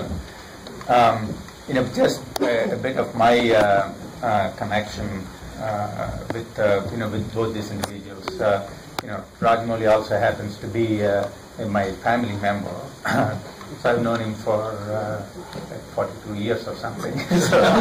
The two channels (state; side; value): identical; both; correlation 1.00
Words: Just a bit of my connection with both these individuals. Rajamouli also happens to be my family member. So I've known him for like 42 years or something. So